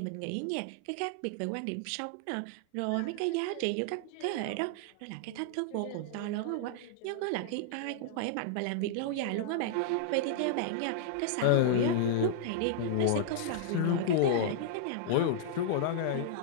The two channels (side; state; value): both; different; correlation -0.01